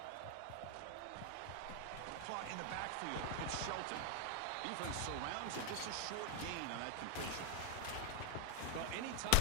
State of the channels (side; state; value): both; different; correlation 0.01